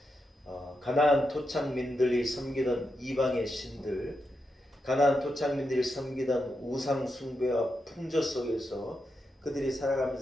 가나안 토착민들이 섬기던 이방의 신들, 가나안 토착민들이 섬기던 우상 숭배와 풍조 속에서 그들이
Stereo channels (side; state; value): both; normal; correlation 0.86